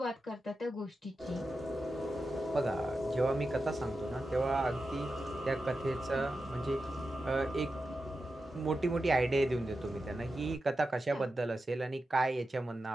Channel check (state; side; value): normal; both; correlation 0.91